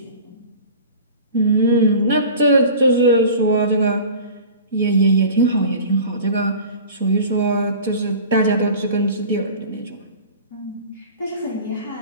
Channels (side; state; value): both; inverted; correlation -0.39